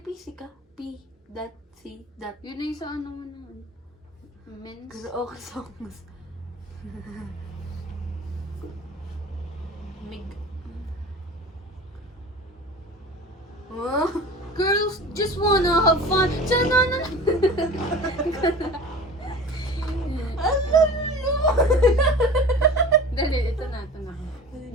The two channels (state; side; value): normal; both; correlation 0.37